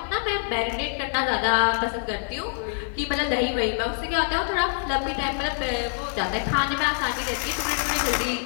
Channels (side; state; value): right; silent; digital silence